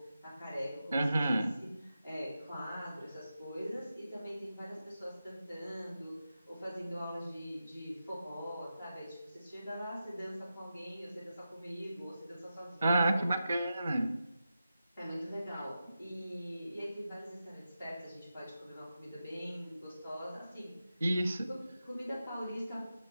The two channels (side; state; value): both; inverted; correlation -0.91